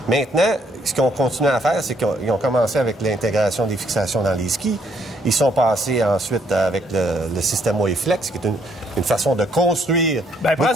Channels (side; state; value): both; normal; correlation 0.69